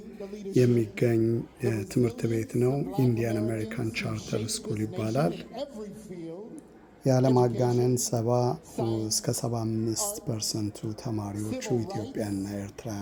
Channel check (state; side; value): identical; both; correlation 1.00